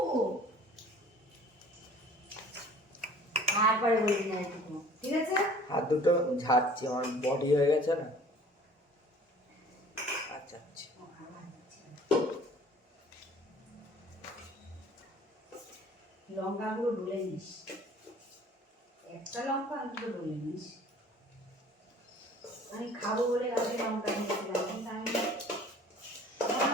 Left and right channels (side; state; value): both; normal; correlation 0.50